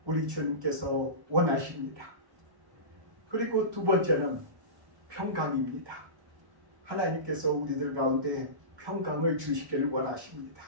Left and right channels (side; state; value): left; late; 1.1 ms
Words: 우리 주님께서 원하십니다. 그리고 두 번째는 평강입니다. 하나님께서 우리들 가운데 평강을 주시기를 원하십니다.